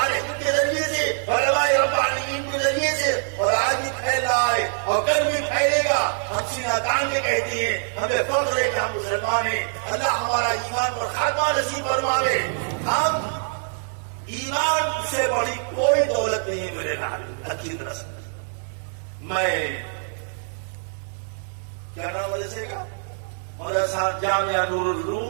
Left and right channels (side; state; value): left; silent; digital silence